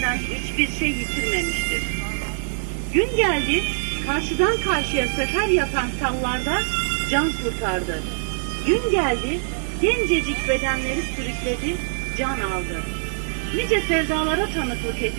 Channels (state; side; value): silent; left; 63 dB below the other